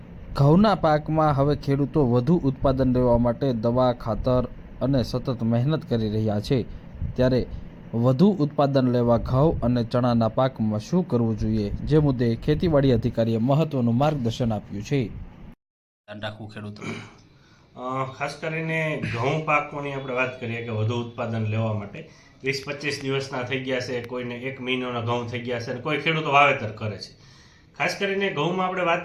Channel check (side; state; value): both; identical; correlation 1.00